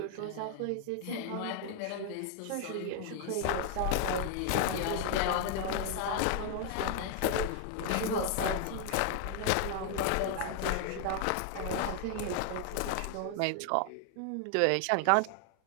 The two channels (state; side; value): different; both; correlation 0.00